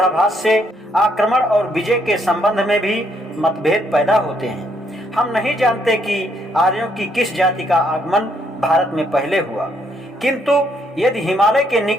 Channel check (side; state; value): both; normal; correlation 0.72